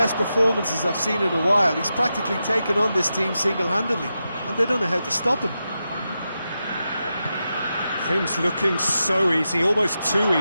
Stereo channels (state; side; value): inverted; both; correlation -0.89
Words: performances I've seen in a while. He's practically taken on this team single-handedly, and they don't know how to stop him. Things looking so easy, almost too